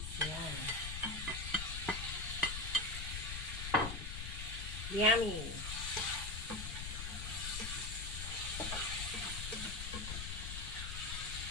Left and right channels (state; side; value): noise; left; rumble, 5 dB below the sound